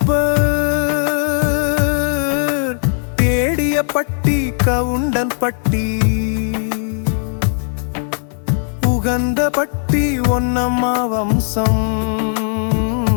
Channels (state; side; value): silent; right; digital silence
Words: தேடிய பட்டி கவுண்டன் பட்டி. உகந்த பட்டி ஒன்னம்மா வம்சம்.